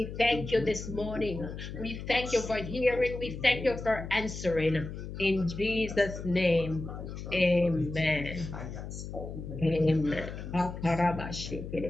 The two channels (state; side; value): noise; left; hum, 9 dB below the sound